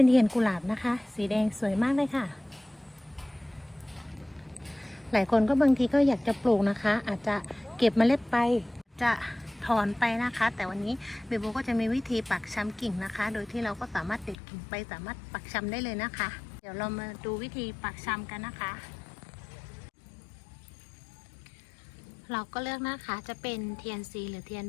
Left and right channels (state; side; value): drops out; right; at 14.4 s